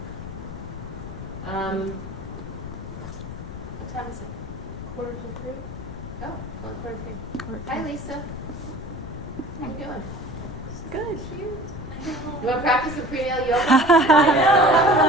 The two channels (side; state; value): left; noise; rumble, 11 dB below the sound